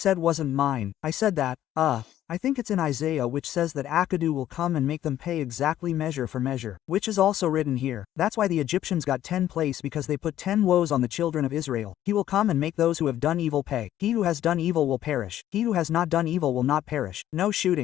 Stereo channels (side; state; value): right; quieter; 12.2 dB